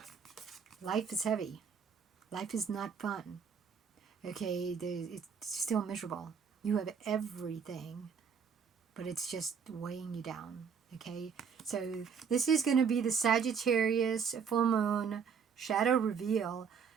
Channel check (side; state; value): left; quieter; 6.5 dB